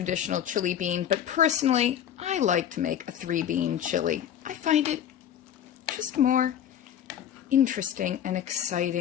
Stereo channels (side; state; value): right; quieter; 9.9 dB